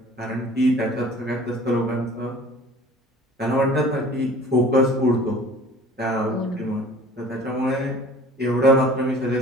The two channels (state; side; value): normal; both; correlation 0.47